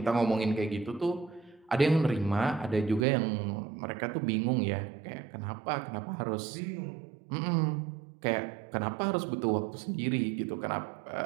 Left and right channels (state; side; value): drops out; left; at 3.1 s